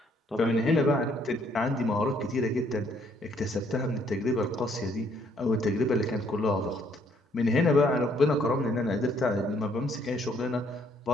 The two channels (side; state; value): both; normal; correlation 0.66